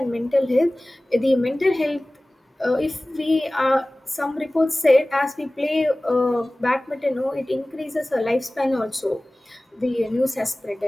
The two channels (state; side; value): normal; both; correlation 0.98